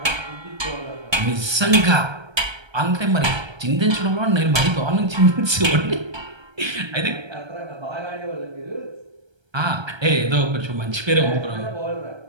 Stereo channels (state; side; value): late; left; 1.3 ms